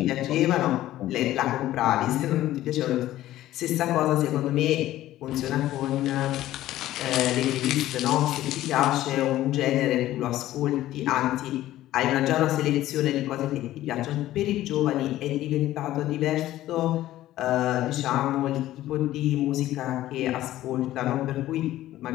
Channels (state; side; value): quieter; right; 14.5 dB